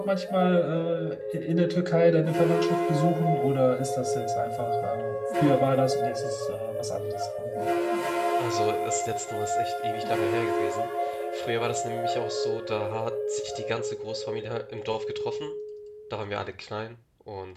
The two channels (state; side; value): identical; both; correlation 1.00